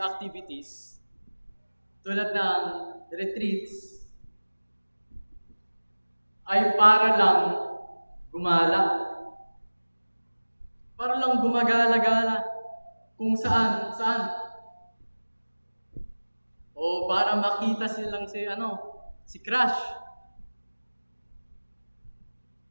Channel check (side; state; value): both; inverted; correlation -1.00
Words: tulad ng retreats ay para lang gumala. Para lang gumagala-gala kung saan. O para makita silang si Crush.